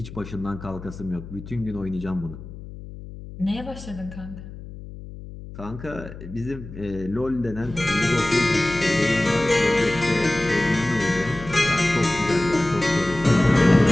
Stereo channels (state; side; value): noise; left; hum, 14 dB below the sound